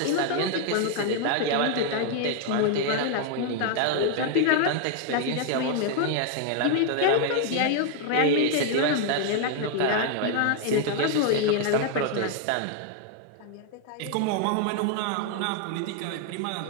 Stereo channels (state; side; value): different; both; correlation 0.00